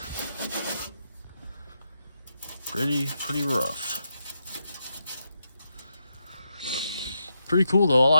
Pretty rough. Pretty cool though, I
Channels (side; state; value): both; inverted; correlation -0.83